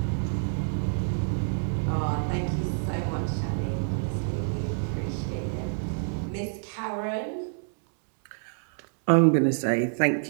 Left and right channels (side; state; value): left; silent; digital silence